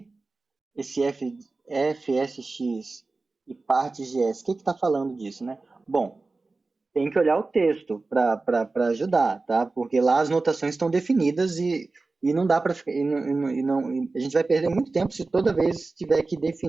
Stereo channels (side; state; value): left; quieter; 3.6 dB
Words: esse FSX e partes de S, o que está falando disso, né? Bom, tem que olhar o texto para ajudar, tá? Porque lá as notações estão definidas e não dá para ficar. A gente vai perder muito tempo se toda vez tiver que